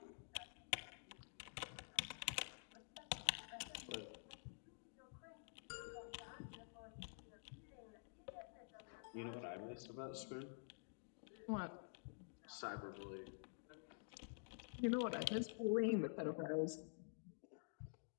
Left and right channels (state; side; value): silent; right; digital silence